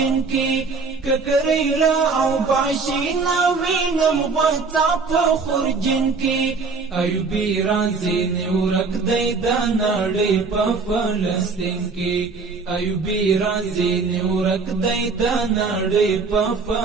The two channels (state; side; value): quieter; left; 4.5 dB